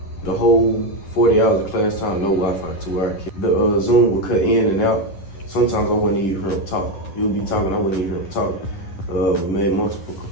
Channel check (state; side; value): late; right; 10 ms